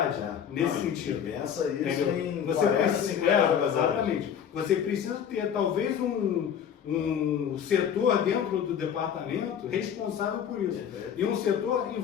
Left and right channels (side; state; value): right; quieter; 8.4 dB